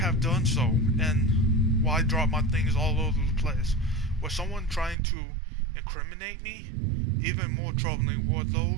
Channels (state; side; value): drops out; left; at 5.0 s